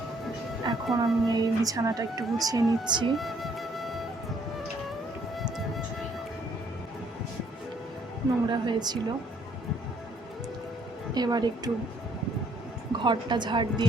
এখন আমি এই বিছানাটা একটু গুছিয়ে নিচ্ছি। নোংরা হয়েছিল, এবার একটু ঘরটা ঝাড়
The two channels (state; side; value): normal; both; correlation 0.65